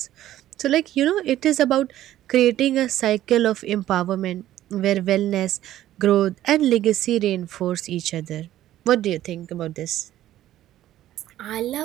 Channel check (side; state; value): left; quieter; 13.3 dB